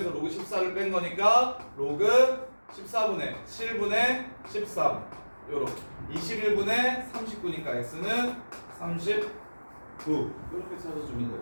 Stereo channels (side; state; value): both; inverted; correlation -1.00